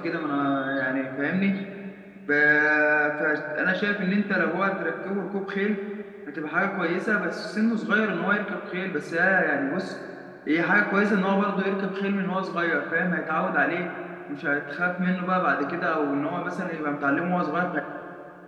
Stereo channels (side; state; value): both; identical; correlation 1.00